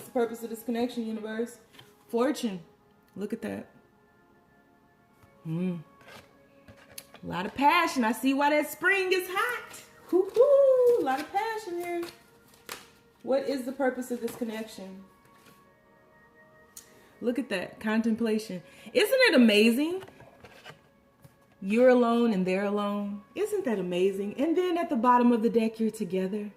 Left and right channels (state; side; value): identical; both; correlation 1.00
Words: the purpose of this connection, universe? Fortune. Look at that. A lot of passion. I see why that spring is hot. Hoo-hoo. A lot of passion here. What is the purpose of this connection? Look at that. Contemplation. Isn't it amazing? You're alone and they're alone. Isn't that amazing? And then at the bottom of the deck, you're together.